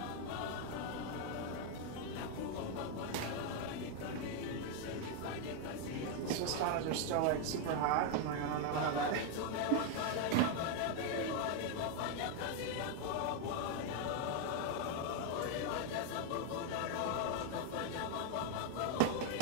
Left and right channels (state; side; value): different; both; correlation 0.01